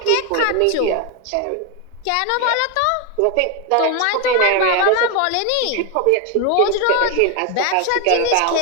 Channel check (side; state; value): both; different; correlation 0.01